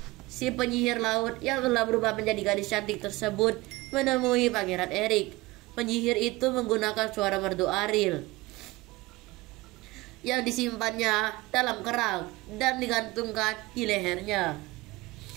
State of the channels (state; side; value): quieter; left; 21.1 dB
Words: si penyihir laut yang telah berubah menjadi gadis cantik tersebut menemui Pangeran Erik. Penyihir itu menggunakan suara merdu Ariel yang disimpannya dalam kerang dan digantungkan di lehernya.